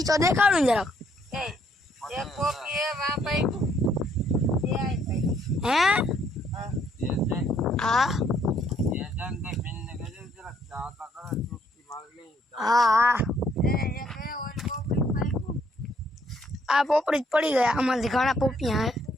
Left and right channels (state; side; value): normal; both; correlation 0.68